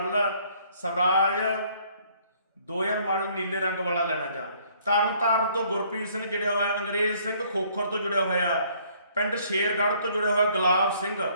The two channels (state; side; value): inverted; both; correlation -0.62